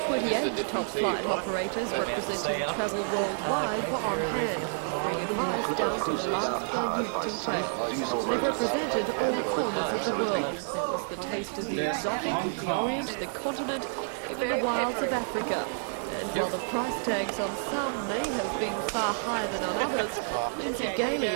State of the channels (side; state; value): left; silent; digital silence